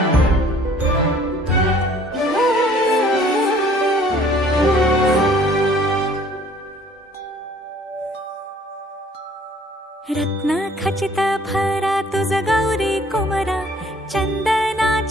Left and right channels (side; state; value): both; normal; correlation 0.56